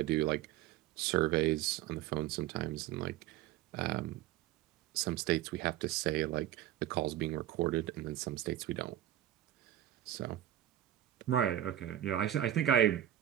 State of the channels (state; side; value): quieter; left; 12.5 dB